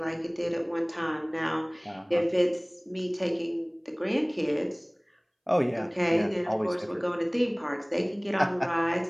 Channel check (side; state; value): both; identical; correlation 1.00